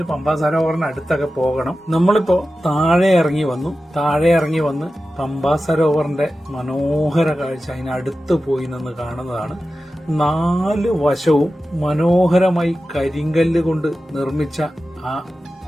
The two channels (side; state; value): both; normal; correlation 0.94